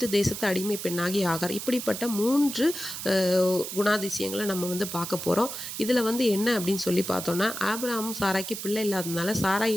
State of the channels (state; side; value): noise; right; hiss, 7 dB below the sound